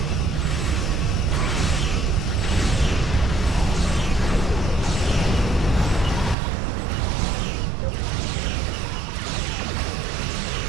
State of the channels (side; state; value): left; drops out; at 6.4 s